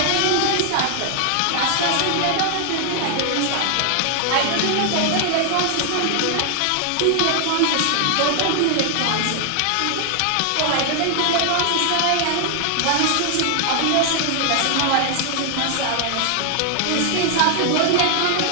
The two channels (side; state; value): both; different; correlation 0.00